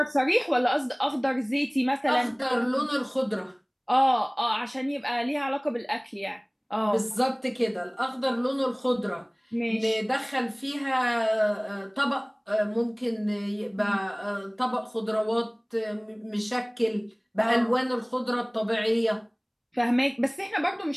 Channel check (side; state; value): both; identical; correlation 1.00